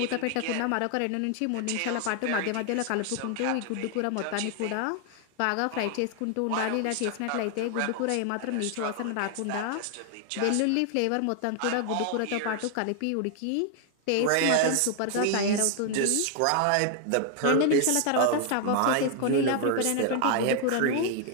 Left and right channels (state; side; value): different; both; correlation 0.00